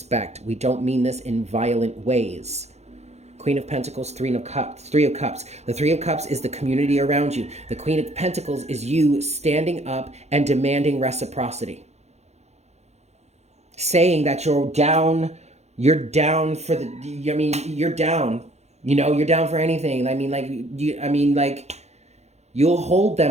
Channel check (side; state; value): left; late; 0.32 ms